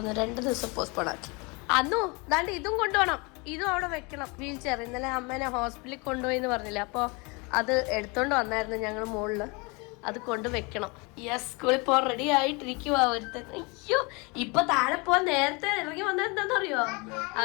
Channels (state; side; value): quieter; right; 28.7 dB